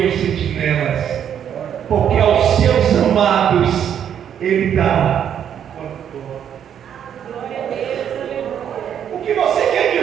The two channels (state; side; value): quieter; left; 9.0 dB